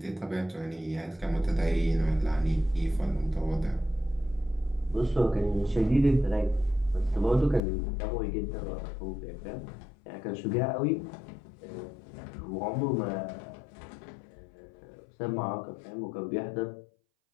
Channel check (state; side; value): drops out; right; at 7.6 s